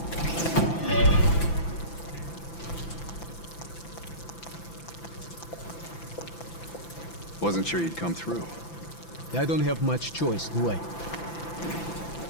Wasn't sure you'd come through. I don't have much choice, do I?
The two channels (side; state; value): right; late; 5.9 ms